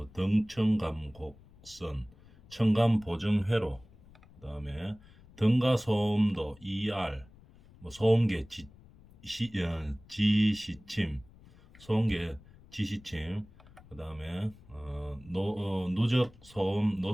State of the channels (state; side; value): noise; left; rumble, 24 dB below the sound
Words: 등청감 곡선, 청감 보정 회로, 그다음에 등가 소음도 ER, 뭐 소음계 지시침, 소음계 지시침, 그다음에 누적 소음